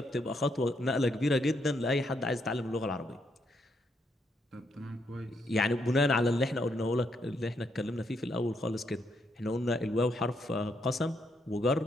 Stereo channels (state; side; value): normal; both; correlation 0.76